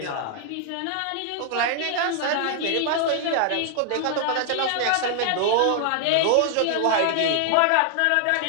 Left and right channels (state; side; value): different; both; correlation 0.00